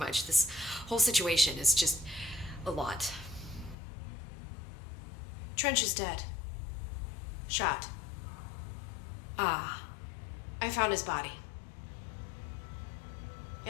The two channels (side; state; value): right; drops out; at 3.8 s